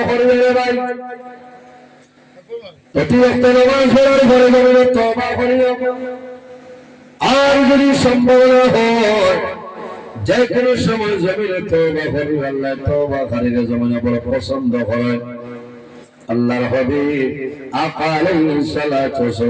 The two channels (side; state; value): both; identical; correlation 1.00